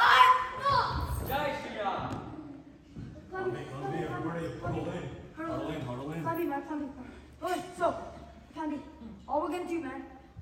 Jai Shri Ram. Everybody, huddle in. Plandy, man, Plandy. Okay, so, Plandy, all we're gonna do, man,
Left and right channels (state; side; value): identical; both; correlation 1.00